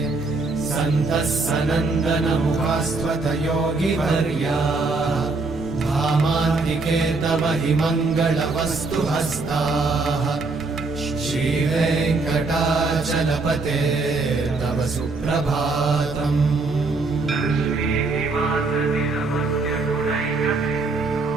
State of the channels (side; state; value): left; quieter; 3.7 dB